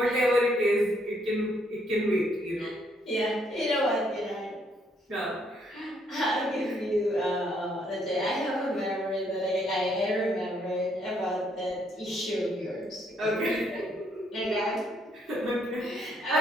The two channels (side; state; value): both; normal; correlation 0.71